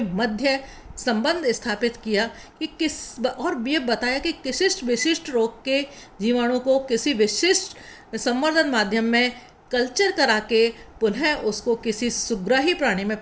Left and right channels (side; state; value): both; identical; correlation 1.00